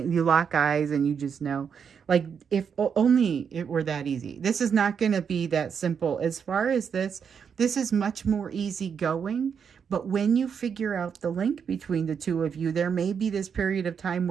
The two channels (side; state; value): left; quieter; 6.9 dB